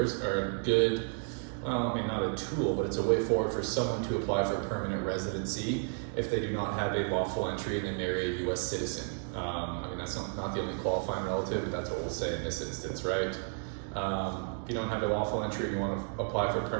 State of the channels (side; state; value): left; silent; 56 dB below the other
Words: are a good, well, I mean, not a tool, but it's a way forward for someone to apply for permanent residency if they do not have a lawful entry and they marry a U.S. citizen. I mean, that's not the only qualifying relative, but that's what we'll say in this instance, right? If you don't have a lawful entry and you want to apply for